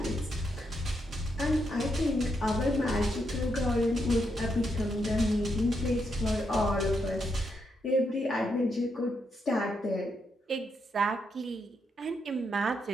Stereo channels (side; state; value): both; normal; correlation 0.80